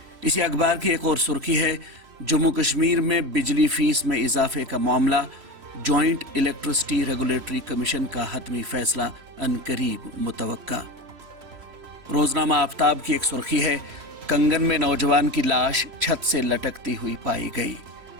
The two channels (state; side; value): late; left; 3.1 ms